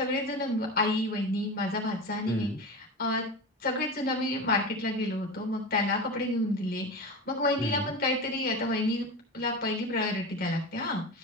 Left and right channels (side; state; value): both; normal; correlation 0.26